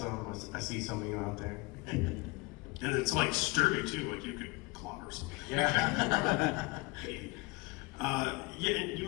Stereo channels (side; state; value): right; quieter; 24.8 dB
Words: I see some of you out there. And it's like sturdy too, like you could clobber something. Yeah. And you